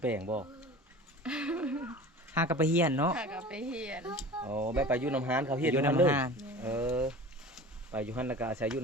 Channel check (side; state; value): both; normal; correlation 0.38